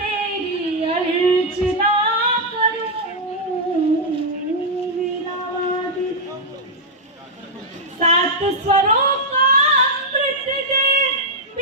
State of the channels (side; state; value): both; normal; correlation -0.04